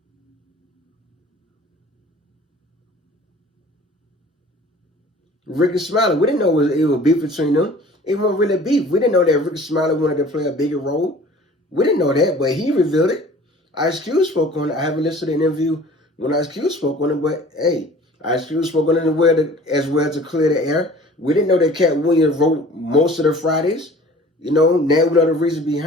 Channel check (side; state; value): both; normal; correlation 0.47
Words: Ricky Smiley. We didn't know it was beef between them. It wasn't really beef. We didn't know that Ricky Smiley wanted to play a bigger role. We didn't know that, but he revealed it. Ice Cube spoke on it. I haven't listened to the interview when Ice Cube spoke on it, but hey, Ice Cube spoke on it as well to clear the air. We didn't know that Katt Williams wrote most of the Fridays. You know, now we know the reason